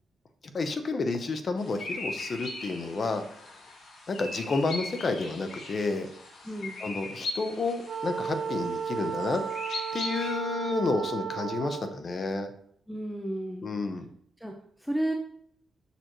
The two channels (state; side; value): normal; both; correlation 0.80